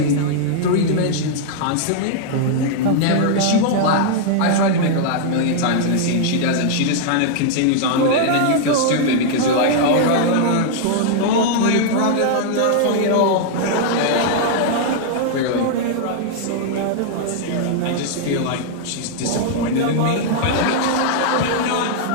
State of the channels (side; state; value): both; different; correlation -0.01